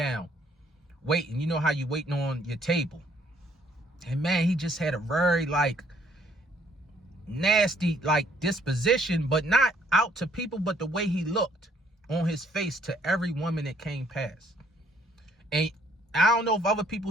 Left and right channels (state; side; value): normal; both; correlation 0.65